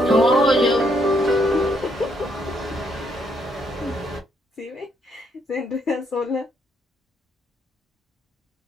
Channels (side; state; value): both; normal; correlation 0.73